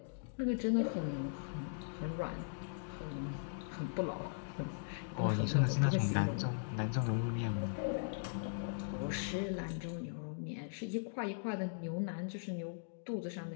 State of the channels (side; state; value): right; silent; digital silence